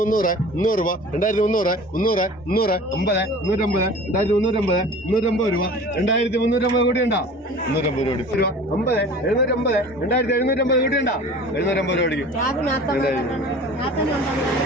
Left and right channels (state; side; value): normal; both; correlation 0.41